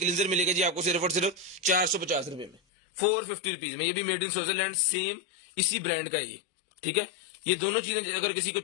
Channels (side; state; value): right; drops out; at 2.6 s